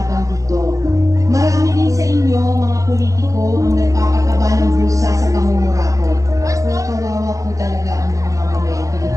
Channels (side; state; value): left; late; 0.16 ms